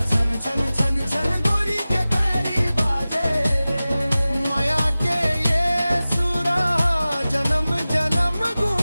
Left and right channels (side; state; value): both; inverted; correlation -0.97